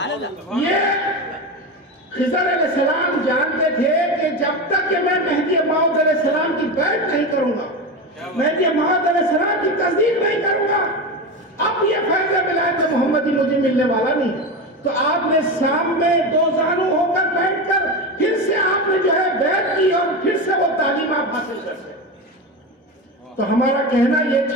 یہ خضر علیہ السلام جانتے تھے کہ جب تک کہ میں مہدی موعود علیہ السلام کی بیعت نہیں کروں گا، مہدی موعود علیہ السلام کی تصدیق نہیں کروں گا، اب یہ فیض ولایت محمدی مجھے ملنے والا نہیں۔ تو آپ نے سامنے 2 زانو ہو کر بیٹھ کر پھر سے آپ نے جو ہے بیعت کی اور پھر سے وہ تعلیم آپ حاصل کرتے۔ تو ہمارا کہنا یہ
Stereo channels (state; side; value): normal; both; correlation 0.20